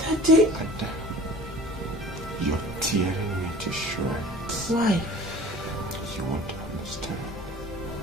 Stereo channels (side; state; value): both; normal; correlation 0.44